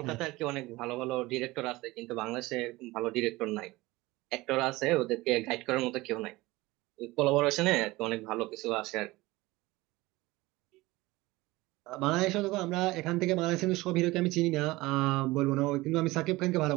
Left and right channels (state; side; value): quieter; left; 20.2 dB